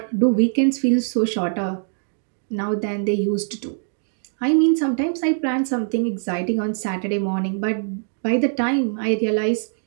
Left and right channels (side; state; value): left; silent; 64 dB below the other